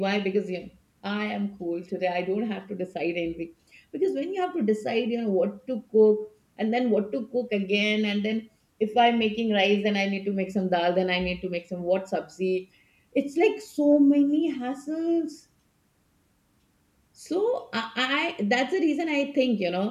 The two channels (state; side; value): identical; both; correlation 1.00